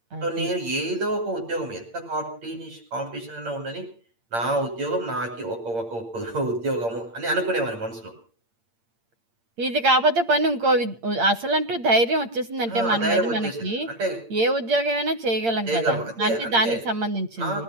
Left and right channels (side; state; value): left; late; 8.7 ms